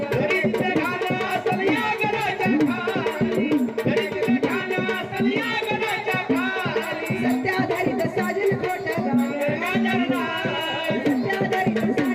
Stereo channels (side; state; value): both; identical; correlation 1.00